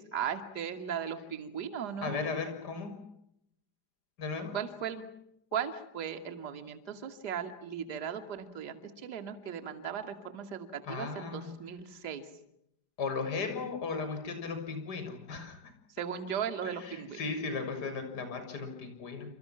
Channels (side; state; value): right; late; 5.0 ms